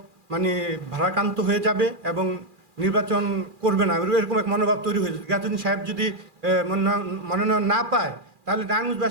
ভারাক্রান্ত হয়ে যাবে এবং নির্বাচন করবে না, এরকম এক মনোভাব তৈরি হয়েছে। গিয়াসউদ্দিন সাহেব যদি মনোনয়ন না পায় তাহলে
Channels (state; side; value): late; left; 2.4 ms